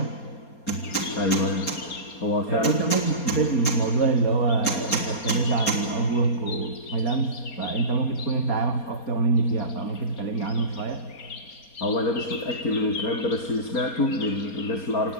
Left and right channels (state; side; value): late; right; 4.2 ms